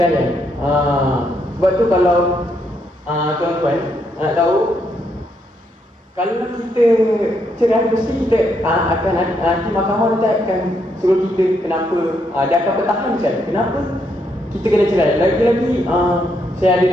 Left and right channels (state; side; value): normal; both; correlation 0.76